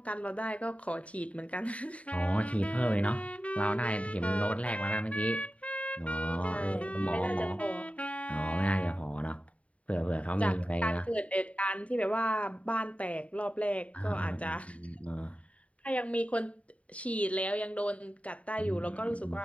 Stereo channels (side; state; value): right; late; 0.065 ms